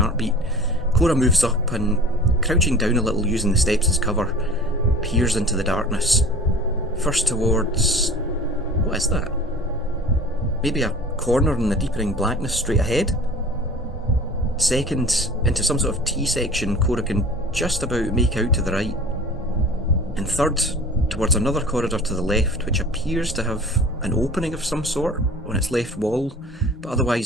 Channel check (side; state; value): both; normal; correlation 0.41